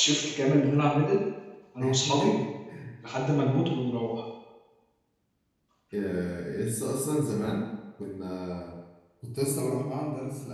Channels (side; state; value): both; identical; correlation 1.00